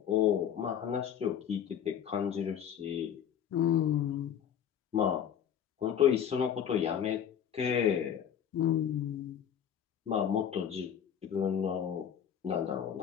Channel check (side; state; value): right; quieter; 9.0 dB